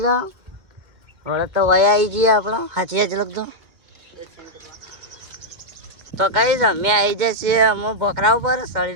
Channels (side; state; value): left; late; 2.0 ms